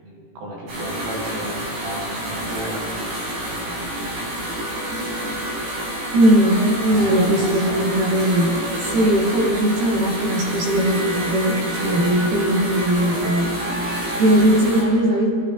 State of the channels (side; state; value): left; late; 18 ms